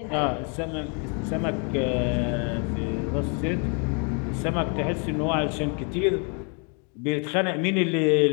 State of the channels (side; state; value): right; quieter; 37.4 dB